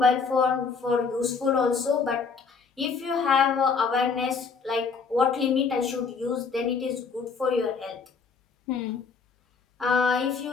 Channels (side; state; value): right; quieter; 5.2 dB